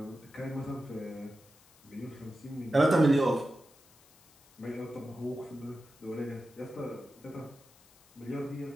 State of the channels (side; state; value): left; noise; hiss, 27 dB below the sound